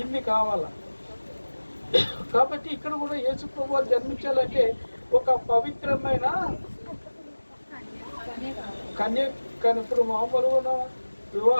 ఇన్ని కావాలా. కాబట్టి ఇక్కడ కూడా యేసు ప్రభు వారు జన్మించాలంటే ఒక పవిత్రమైన కానీ ఇప్పుడు మామూలుగా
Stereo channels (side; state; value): both; inverted; correlation -1.00